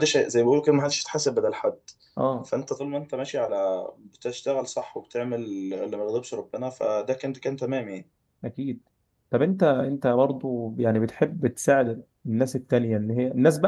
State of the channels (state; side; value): identical; both; correlation 1.00